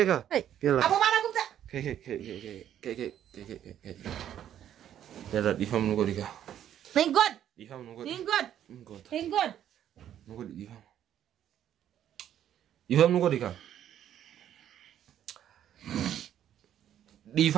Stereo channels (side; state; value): left; quieter; 10.6 dB